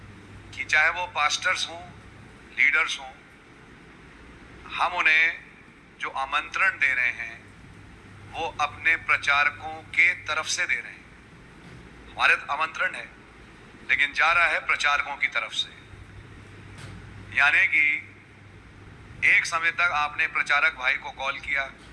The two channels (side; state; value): both; identical; correlation 1.00